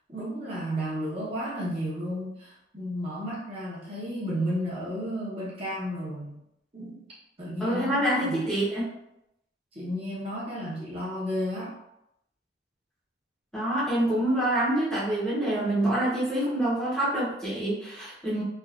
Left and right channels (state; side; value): normal; both; correlation 0.60